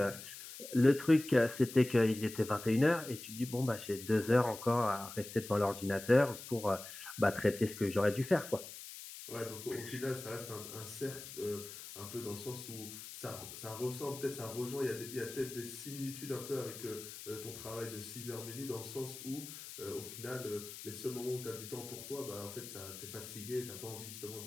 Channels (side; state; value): left; noise; hiss, 12 dB below the sound